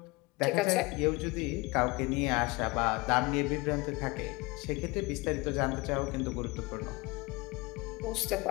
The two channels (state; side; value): quieter; right; 24.5 dB